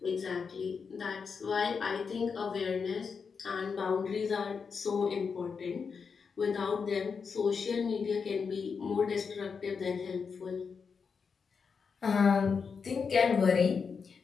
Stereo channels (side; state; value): right; quieter; 5.7 dB